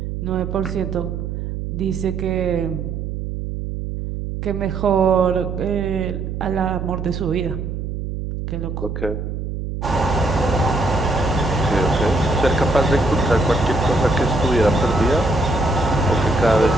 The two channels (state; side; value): noise; right; hum, 5 dB below the sound